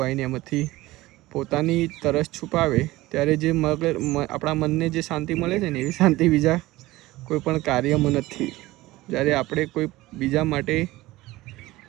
એમાંથી પોતાની તરસ છુપાવે ત્યારે જે આપણા મનને જે શાંતિ મળે છે ને એવી શાંતિ બીજા કોઈ પણ કાર્યમાં નથી. જ્યારે આપણે કોઈ બીજા માટે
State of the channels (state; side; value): quieter; left; 18.5 dB